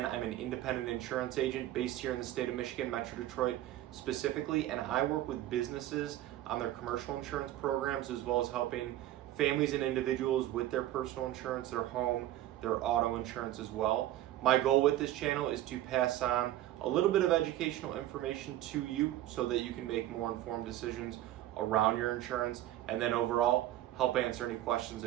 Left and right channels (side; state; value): left; quieter; 14.0 dB